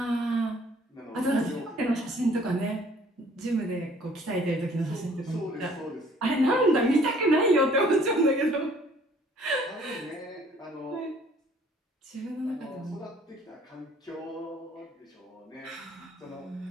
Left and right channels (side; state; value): both; normal; correlation 0.57